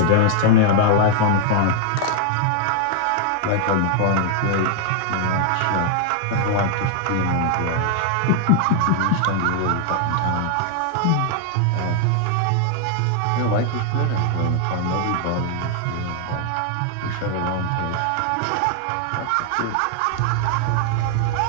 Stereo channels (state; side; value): different; both; correlation 0.00